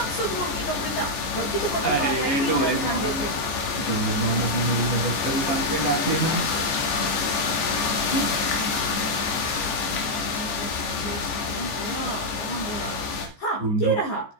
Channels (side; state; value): right; late; 14 ms